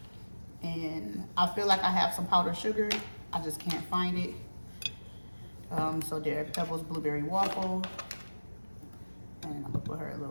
And I feel like I have some powdered sugar. I just can't find it. So there, Pebbles blueberry waffle. And I'm gonna put her a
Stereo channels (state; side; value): inverted; both; correlation -1.00